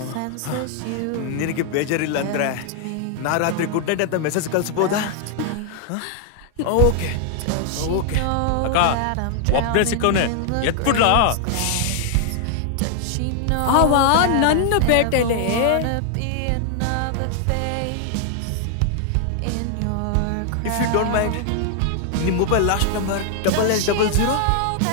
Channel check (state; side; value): different; both; correlation 0.00